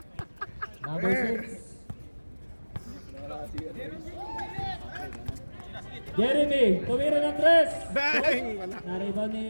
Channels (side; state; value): both; inverted; correlation -1.00